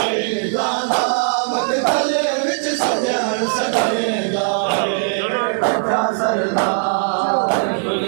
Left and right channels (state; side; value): silent; left; digital silence